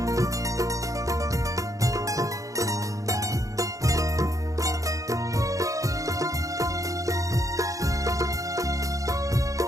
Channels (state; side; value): late; left; 0.16 ms